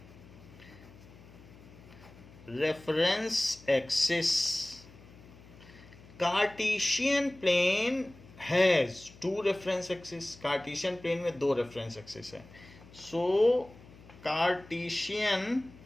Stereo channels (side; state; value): left; noise; hum, 21 dB below the sound